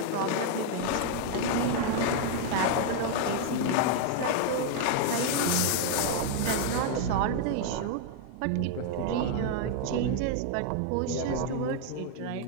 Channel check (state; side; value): different; both; correlation 0.00